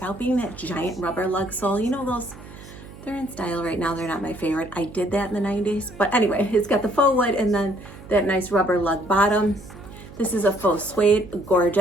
being that giant rubber lug sole. You know those, they're in style right now. They're not my favorite. I did that in the 90s. But anyway, it's got the faux wood and then that nice rubber lug bottom. This is a faux suede,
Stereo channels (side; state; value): right; noise; hum, 17 dB below the sound